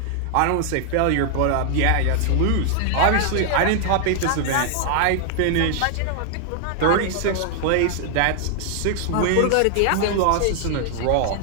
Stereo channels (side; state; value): both; different; correlation 0.00